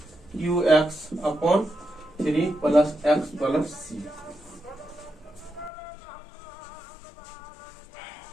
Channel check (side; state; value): right; drops out; at 5.7 s